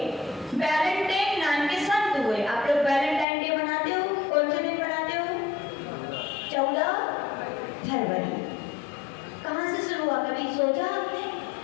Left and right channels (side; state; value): right; drops out; at 3.2 s